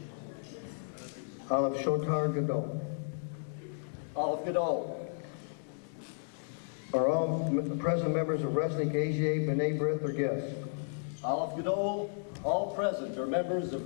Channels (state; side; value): silent; right; digital silence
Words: Aleph Shotar Gadol. Aleph Gadol. Are all present members of Resnick, AZA, B'nai B'rith, or guests? Aleph Gadol. All present are members of